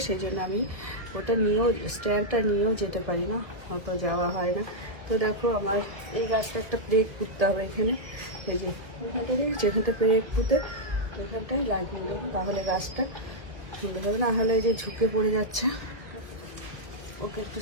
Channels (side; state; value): left; late; 1.7 ms